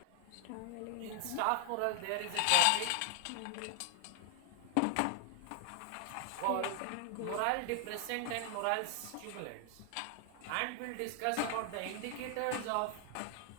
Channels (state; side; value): different; both; correlation -0.01